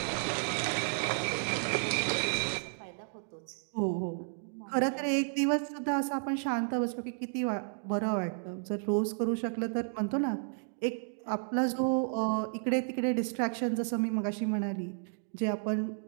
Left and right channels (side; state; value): left; silent; digital silence